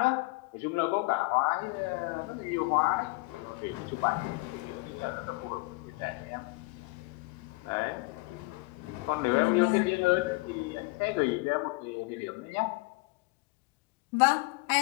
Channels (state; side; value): quieter; right; 25.3 dB